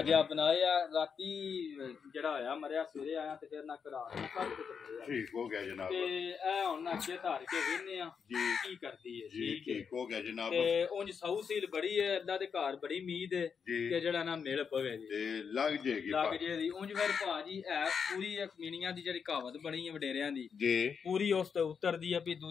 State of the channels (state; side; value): quieter; right; 6.4 dB